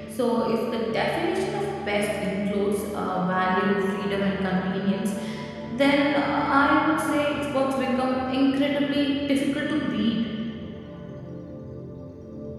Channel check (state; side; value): identical; both; correlation 1.00